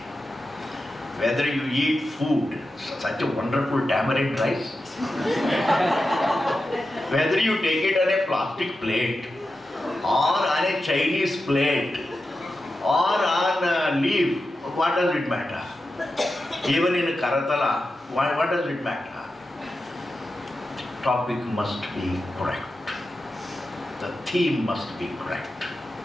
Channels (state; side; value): normal; both; correlation 0.91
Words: Whether you eat food, such a wonderful tamarind rice, whether you take it on a plastic plate, or on a Chinese plate, or on a leaf, what does it matter? Even in Karatala, what does it matter? The topic must be correct. The theme must be correct.